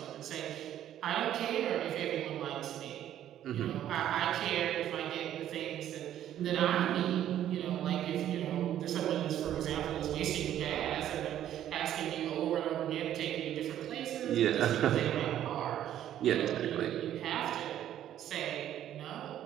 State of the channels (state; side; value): quieter; left; 11.4 dB